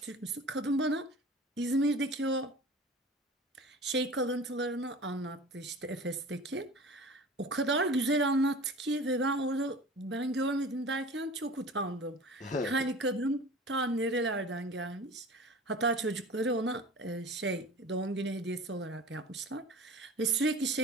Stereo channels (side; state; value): both; normal; correlation 0.39